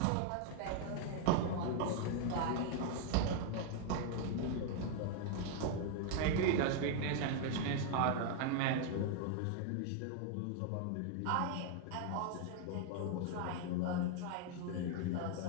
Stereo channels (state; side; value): different; both; correlation 0.00